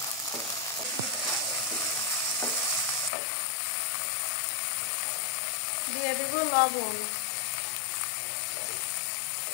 দিয়ে দেব লবণ,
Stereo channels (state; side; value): drops out; right; at 3.1 s